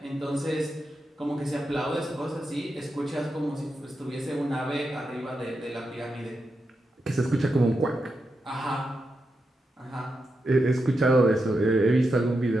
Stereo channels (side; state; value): both; normal; correlation 0.87